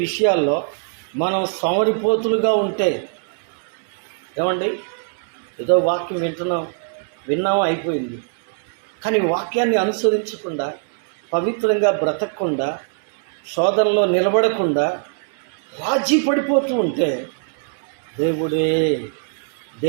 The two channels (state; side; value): silent; left; digital silence